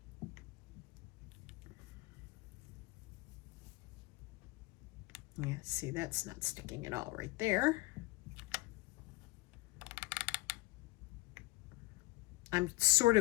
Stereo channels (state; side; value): quieter; right; 22.7 dB